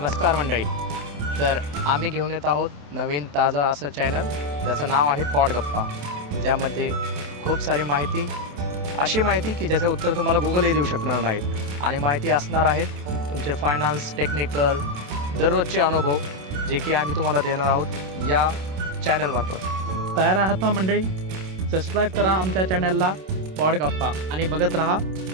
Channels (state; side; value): late; left; 27 ms